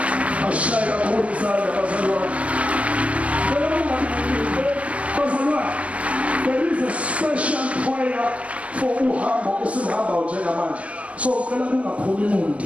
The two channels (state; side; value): late; left; 0.064 ms